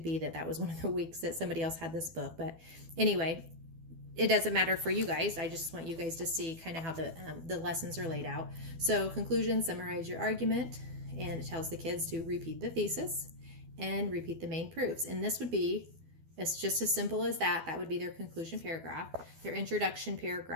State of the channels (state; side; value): late; left; 12 ms